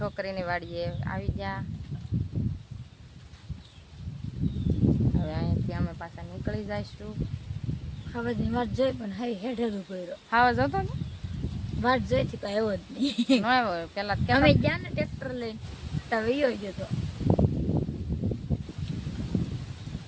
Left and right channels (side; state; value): both; identical; correlation 1.00